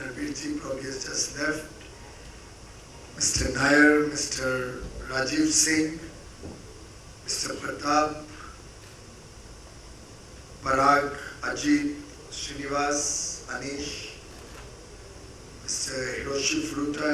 probably has just left. Mr. Nair, Mr. Rajiv Singh, Mr. Pratap, Parag, Ajit, Srinivas, Anish, Mr. Hiroshi Furuta,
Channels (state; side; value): identical; both; correlation 1.00